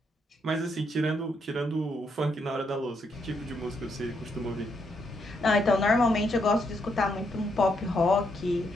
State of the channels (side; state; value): both; normal; correlation 0.77